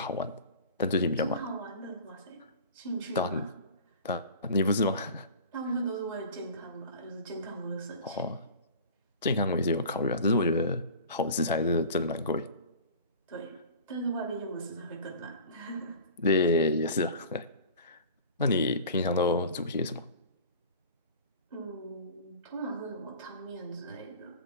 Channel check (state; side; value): inverted; both; correlation -0.39